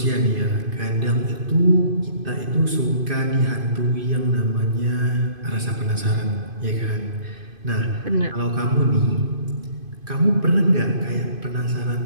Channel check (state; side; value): late; left; 2.5 ms